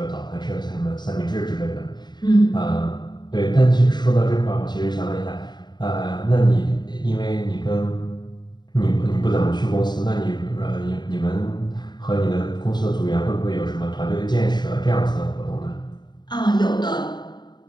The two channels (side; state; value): right; late; 0.21 ms